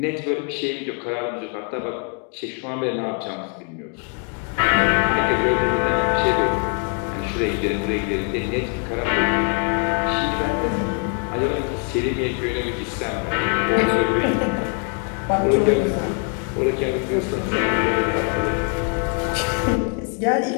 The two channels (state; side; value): quieter; right; 38.2 dB